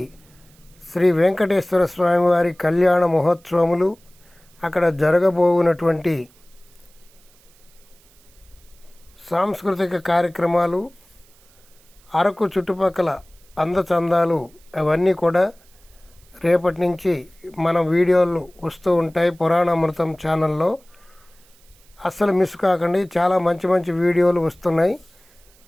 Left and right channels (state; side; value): noise; right; hiss, 30 dB below the sound